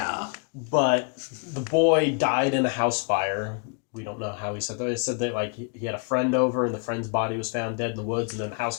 But the boy died in a house fire. We don't know how he said that. He said that like he had a friend over and the friend's body was found dead in the woods, and then the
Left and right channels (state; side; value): quieter; right; 35.4 dB